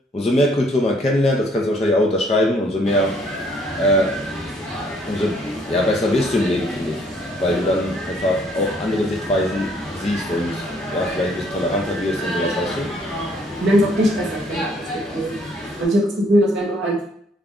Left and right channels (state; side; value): normal; both; correlation 0.64